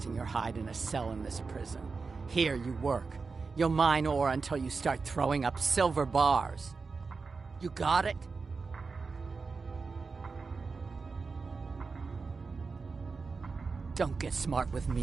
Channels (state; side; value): quieter; left; 4.5 dB